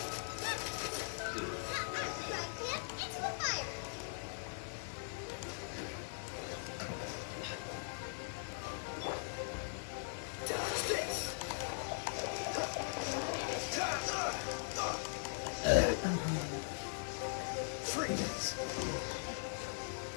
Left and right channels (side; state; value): right; silent; 51 dB below the other